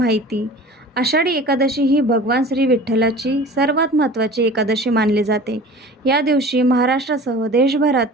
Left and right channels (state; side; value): normal; both; correlation 0.41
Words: आषाढी एकादशी ही भगवान श्री विठ्ठलाची सर्वात महत्त्वाची एकादशी मानली जाते. या दिवशी महाराष्ट्रासह